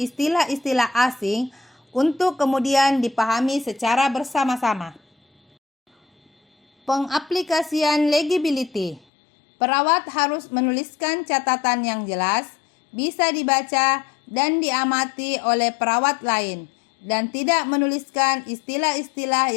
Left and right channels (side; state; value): right; drops out; at 9.0 s